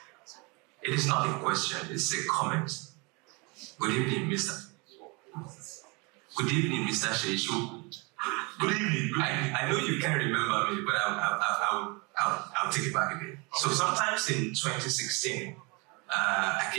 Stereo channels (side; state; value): left; quieter; 29.0 dB